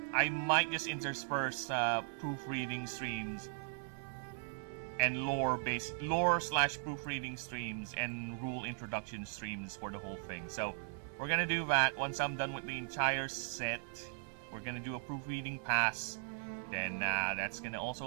might just intersperse proofreading streams and lore/proofreading streams and rule introduction streams for the whole thing. So we're gonna do that. Once I'm done with the entire set, we're gonna do a proofreading pass. Then that's gonna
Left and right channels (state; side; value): silent; left; 52 dB below the other